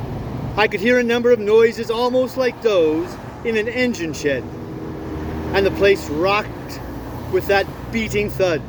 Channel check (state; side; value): identical; both; correlation 1.00